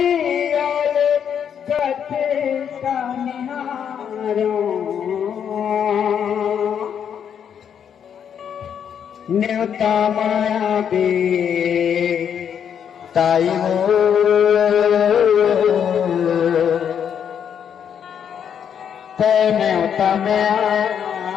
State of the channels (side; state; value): right; quieter; 8.2 dB